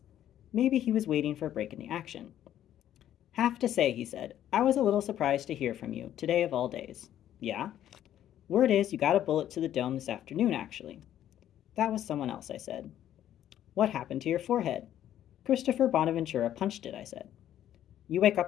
Maybe he was waiting for a break in the action. Have to say, he said, I was a little surprised to hear from you, today of all days. Yeah? Word is you got a bullet to the dome this afternoon, actually. That was someone else, I said. What happened to your forehead? Christopher Bonaventura punched it, I said. You wake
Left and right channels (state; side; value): quieter; right; 11.5 dB